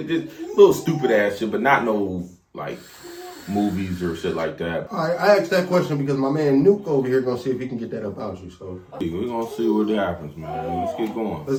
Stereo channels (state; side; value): identical; both; correlation 1.00